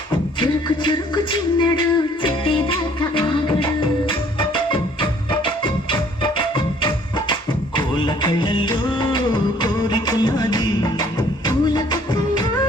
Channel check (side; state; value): both; normal; correlation 0.58